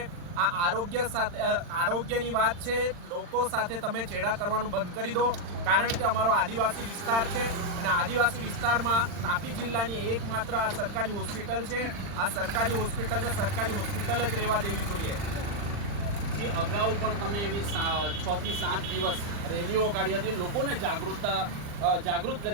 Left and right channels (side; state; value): left; late; 40 ms